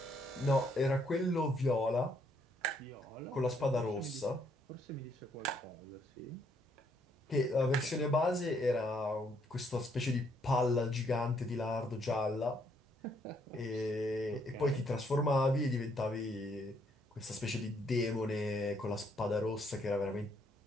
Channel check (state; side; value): normal; both; correlation 0.71